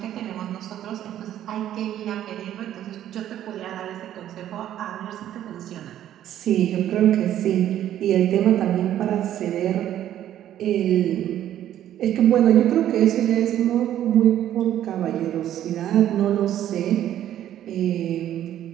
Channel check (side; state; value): left; quieter; 11.6 dB